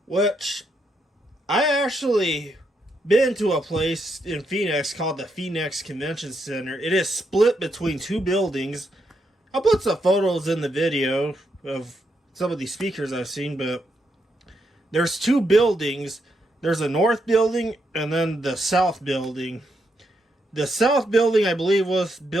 Which, I actually been to a place in Phoenix called the Phoenix Convention Center. It is split between two buildings. I'll put some photos in the video of some of these speakers I've seen, but there's two buildings. There's a north building and then the south building. The south building, I believe, was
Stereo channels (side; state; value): both; normal; correlation 0.80